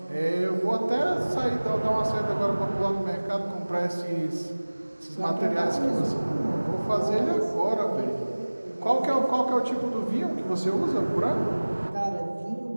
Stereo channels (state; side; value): inverted; both; correlation -1.00